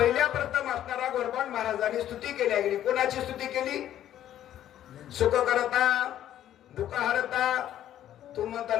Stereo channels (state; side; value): quieter; right; 11.6 dB